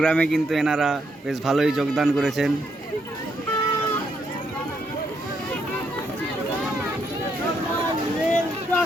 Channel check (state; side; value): normal; both; correlation 0.76